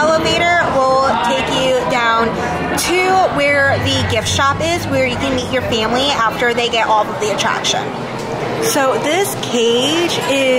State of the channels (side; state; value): both; identical; correlation 1.00